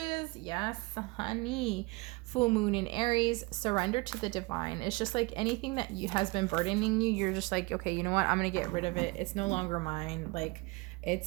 Yes, honey. Full moon in Aries. Surrender to the divine. It's just like anything that has been burdening you. You're just like, okay, you know what? I'm going to get rid of it. It's no longer mine. Like,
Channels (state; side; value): quieter; left; 25.1 dB